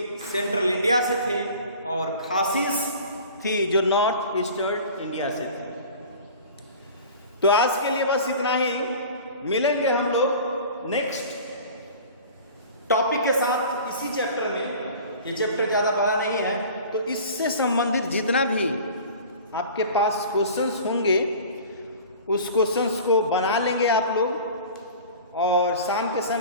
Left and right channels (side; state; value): both; inverted; correlation -0.41